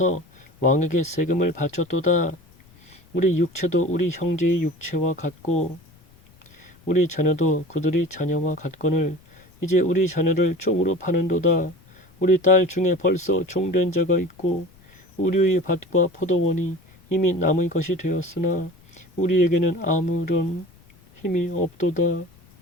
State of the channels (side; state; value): left; noise; rumble, 28 dB below the sound